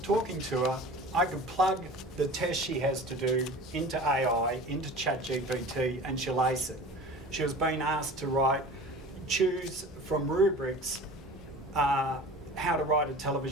to her, I could plug the test she has to do into AI, into ChatGPT, and she'll ace it. She was being asked to choose from rubrics how to write a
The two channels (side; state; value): both; normal; correlation 0.39